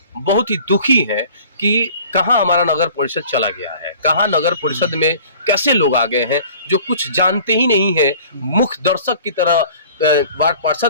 बहुत ही दुखी हैं कि कहाँ हमारा नगर परिषद चला गया है, कहाँ नगर परिषद में कैसे लोग आ गए हैं जो कुछ जानते ही नहीं है। मुख्य दर्शक की तरह वार्ड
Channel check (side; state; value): both; inverted; correlation -0.48